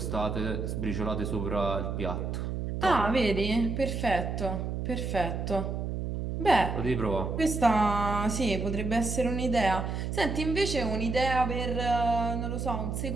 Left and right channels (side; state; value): right; noise; hum, 3 dB below the sound